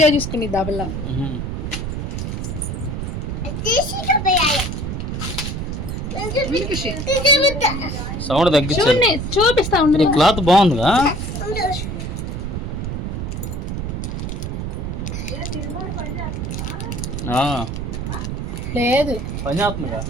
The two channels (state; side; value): noise; right; rumble, 4 dB below the sound